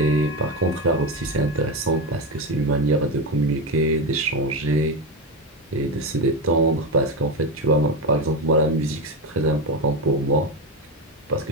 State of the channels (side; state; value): both; normal; correlation 0.14